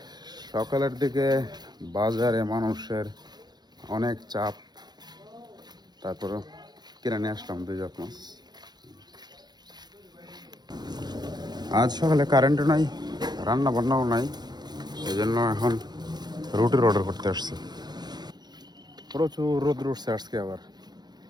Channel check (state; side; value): late; left; 0.20 ms